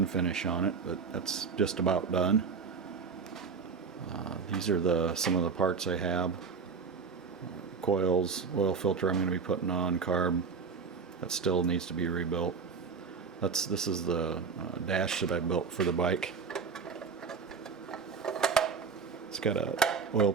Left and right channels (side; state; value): left; quieter; 5.5 dB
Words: finish on it, but that's just about done. These are some of the parts I have. Coils, oil filter I'm going to be putting on, carb that still needs to be rebuilt. This is the dash that I built for the bike. It's got a oil